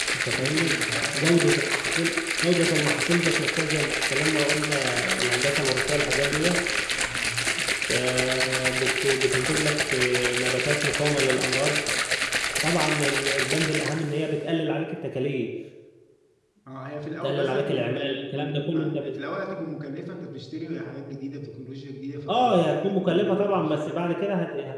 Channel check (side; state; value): both; identical; correlation 1.00